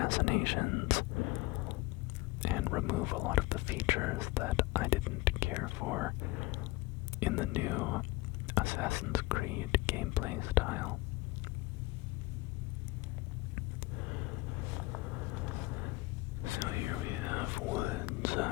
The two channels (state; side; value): quieter; right; 20.5 dB